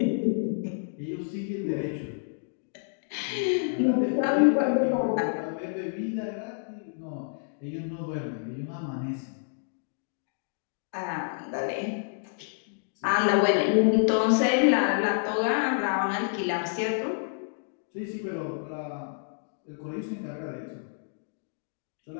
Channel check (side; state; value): right; silent; digital silence